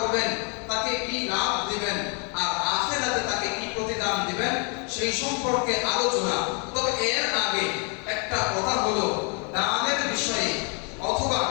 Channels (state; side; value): quieter; right; 36.7 dB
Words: তাকে কি লাভ দিবেন, আর আখিরাতে তাকে কি প্রতিদান দিবেন, সেই সম্পর্কে আলোচনা। তবে এর আগে একটা কথা হলো, দানের বিষয়ে অথবা